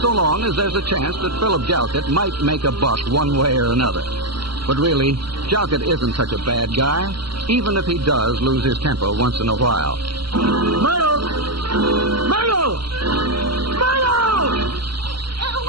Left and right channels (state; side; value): late; left; 0.73 ms